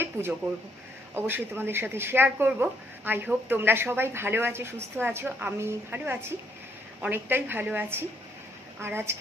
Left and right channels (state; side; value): normal; both; correlation 0.71